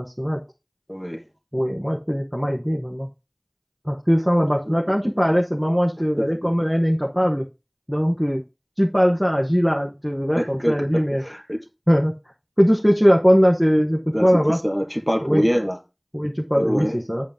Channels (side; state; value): both; identical; correlation 1.00